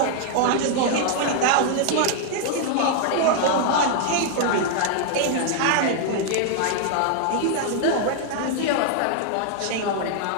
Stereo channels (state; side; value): different; both; correlation -0.01